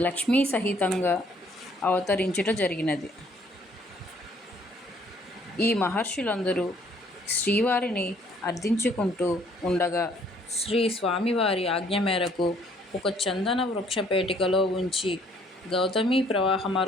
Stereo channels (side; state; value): both; normal; correlation 0.62